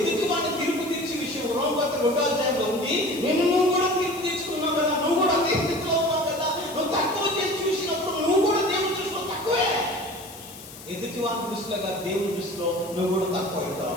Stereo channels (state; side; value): noise; left; hiss, 16 dB below the sound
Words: వాడిని తీర్పు తీర్చే విషయం రోమపత్రిక 2వ అధ్యాయంలో ఉంది. నువ్వు కూడా తీర్పు తీర్చుకున్నావు కదా, నువ్వు కూడా అదే స్థితిలో ఉన్నావు కదా. నువ్వు తక్కువ చేసి చూసినప్పుడు నువ్వు కూడా దేవుని దృష్టిలో తక్కువే. ఎదుటి వారి దృష్టిలో కాదు, దేవుని దృష్టిలో నువ్వు కూడా తక్కువ అవుతావు.